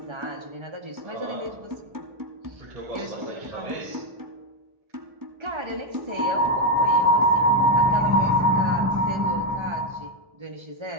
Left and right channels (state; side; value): late; left; 1.3 ms